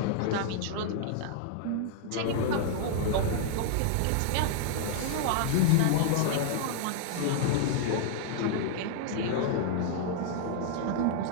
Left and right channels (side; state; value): both; different; correlation -0.01